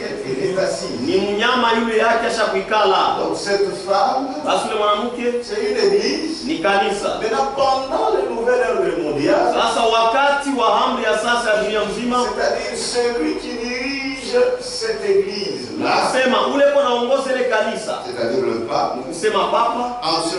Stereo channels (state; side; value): identical; both; correlation 1.00